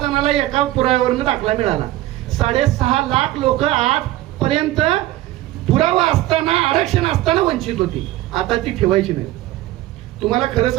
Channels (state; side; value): quieter; left; 15.9 dB